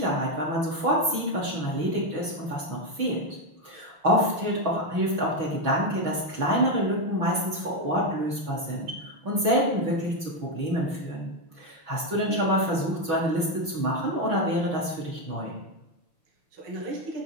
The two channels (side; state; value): left; late; 6.2 ms